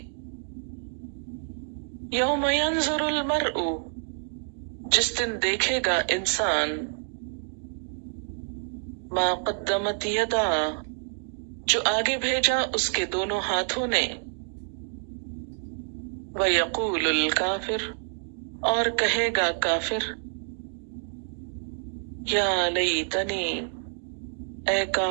یوم ینظر المرء جس دن دیکھے گا انسان، ما قدمت یدا جو آگے بھیجا اس کے دونوں ہاتھوں نے، وَيَقُولُ الْكَافِرُ اور کہے گا کافر، یا لیتنی اے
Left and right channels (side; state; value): left; silent; digital silence